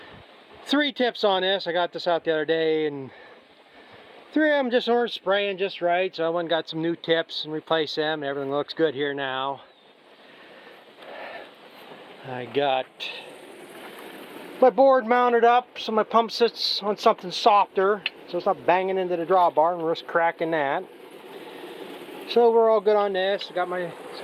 3 tips on this. I got this out the other day and 3 of them just weren't spraying just right, so I went and got some new tips and replaced them. Everything looks good here now. I got my board mounted up so my pump sits on something softer so it's not banging into the drawbar and risk cracking that. So we're all good on this. I got my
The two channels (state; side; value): identical; both; correlation 1.00